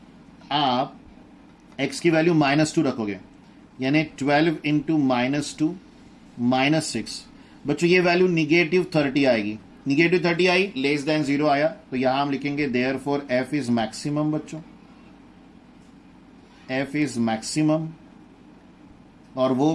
आप x की वैल्यू -2 रखोगे, यानी 12 इंटू -2 -6। बच्चों ये वैल्यू निगेटिव 30 आएगी। निगेटिव 30 आई, लेस देन 0 आया, तो यहां हम लिखेंगे देयरफॉर f इज मैक्सिमम। बच्चों f इज मैक्सिमम, और वो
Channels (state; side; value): identical; both; correlation 1.00